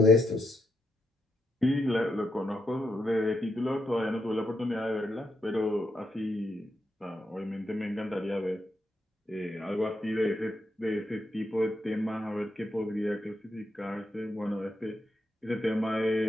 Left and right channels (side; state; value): both; normal; correlation 0.82